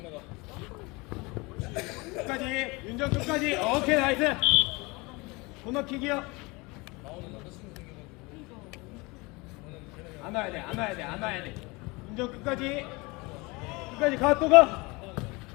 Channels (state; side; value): quieter; right; 25.4 dB